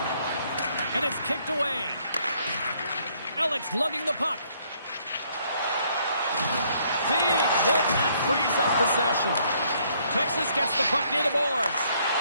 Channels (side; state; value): both; inverted; correlation -0.67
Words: And it's kicked away. Alex lugging the puck. Big hit that frees up possession. Texas gets the puck near the boards.